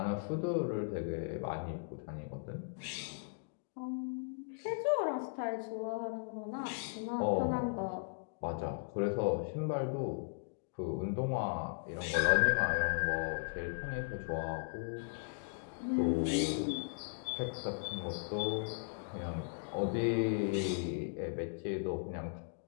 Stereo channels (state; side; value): silent; right; digital silence